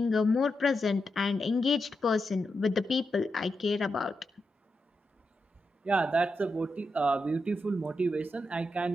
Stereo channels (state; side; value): normal; both; correlation 0.86